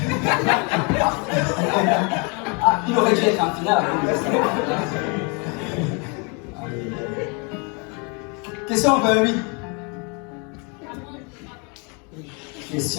Ah, il aurait dû être en finale. Question 28.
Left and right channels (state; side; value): quieter; right; 33.5 dB